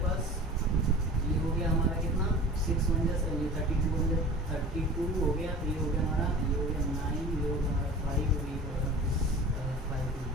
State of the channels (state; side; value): normal; both; correlation 0.40